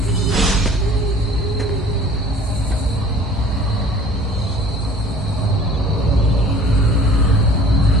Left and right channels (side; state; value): both; normal; correlation 0.48